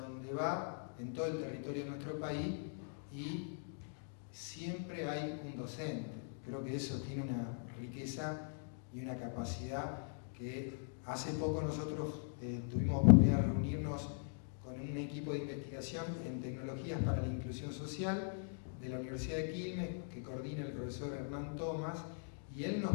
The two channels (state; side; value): silent; right; digital silence